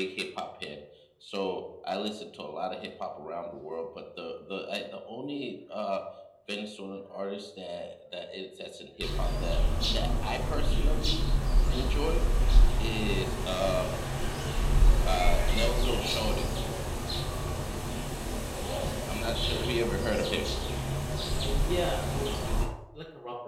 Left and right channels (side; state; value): both; identical; correlation 1.00